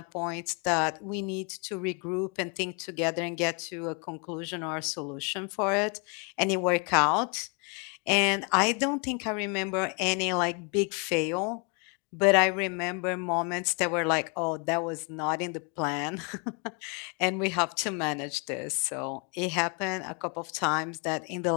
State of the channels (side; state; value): right; quieter; 34.8 dB